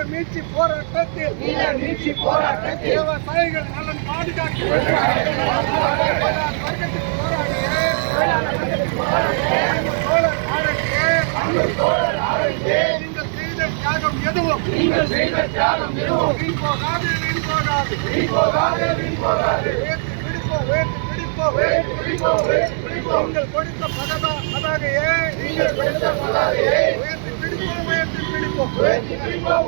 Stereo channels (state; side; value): silent; left; digital silence